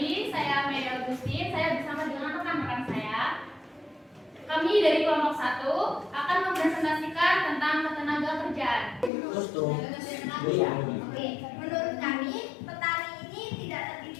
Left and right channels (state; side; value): drops out; right; at 9.1 s